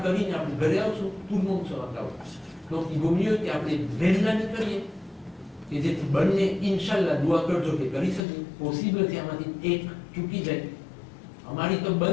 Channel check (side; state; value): right; drops out; at 8.2 s